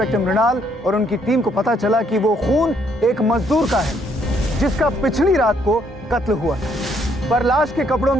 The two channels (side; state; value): both; normal; correlation 0.70